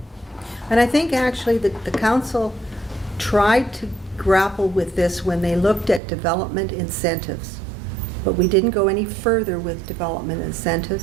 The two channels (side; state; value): left; drops out; at 6.0 s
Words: And I think actually that the council tried to grapple with this when they looked at development incentives. But we didn't go any further with development